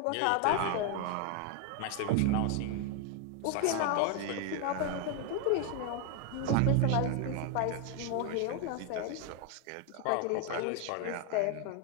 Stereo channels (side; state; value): both; different; correlation 0.01